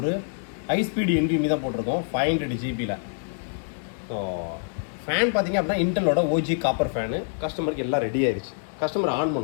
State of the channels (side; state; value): right; silent; digital silence